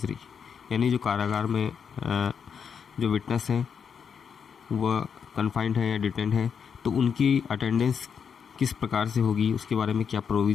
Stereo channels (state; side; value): quieter; right; 6.9 dB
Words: यानी जो कारागार में जो विटनेस हैं वह कन्फाइंड है या डिटेंड है, तो उनकी अटेंडेंस किस प्रकार से होगी, उसके बारे में क्या